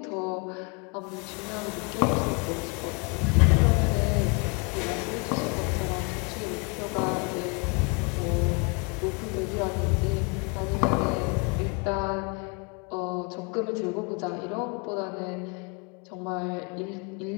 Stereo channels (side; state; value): right; quieter; 32.2 dB